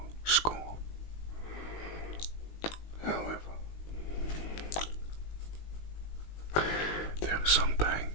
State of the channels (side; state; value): right; late; 19 ms